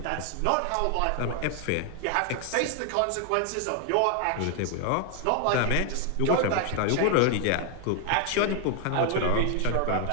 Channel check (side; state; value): both; different; correlation 0.00